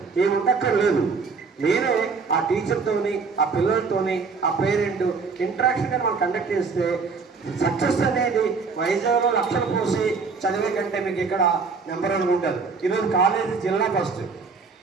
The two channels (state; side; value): quieter; left; 4.9 dB